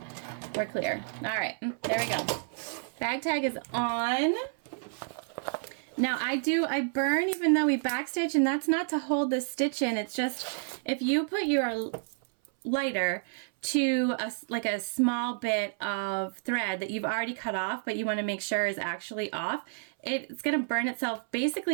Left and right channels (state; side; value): silent; left; 57 dB below the other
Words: we're clear. All right, there we go. Bag tag is on. Now I burn even though we backstitch, and that's not to hold the stitch in. It's just if you put your lighter to like a small bit of thread that you've already cut off, but you want to make sure is actually off, it's going to burn itself